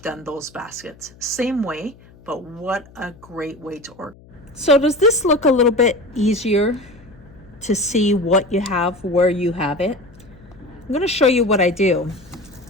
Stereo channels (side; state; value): left; noise; hum, 24 dB below the sound